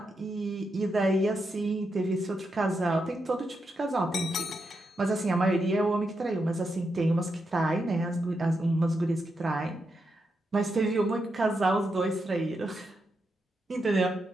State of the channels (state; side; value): normal; both; correlation 0.84